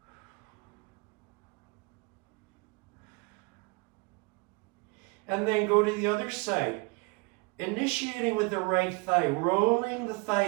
And then go to the other side. Initiating with the right thigh, rolling the thigh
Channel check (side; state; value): left; quieter; 29.2 dB